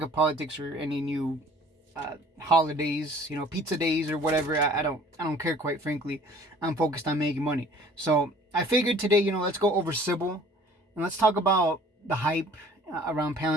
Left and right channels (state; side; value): normal; both; correlation 0.52